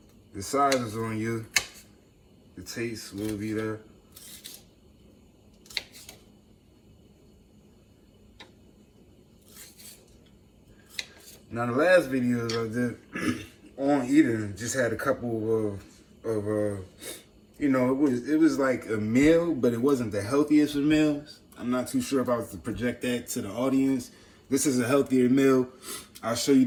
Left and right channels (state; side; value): identical; both; correlation 1.00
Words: The size is on you. The taste will be there. Now the last videos I did on eating just had a couple of you know, it was like a meal, but it wasn't the healthiest of meals. I'm not too sure if I was to project that to the audience. This is a healthier meal. I'll show you